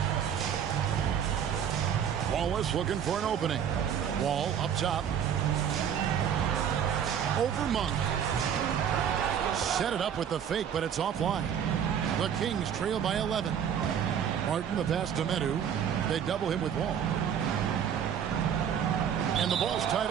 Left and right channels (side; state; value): left; quieter; 8.5 dB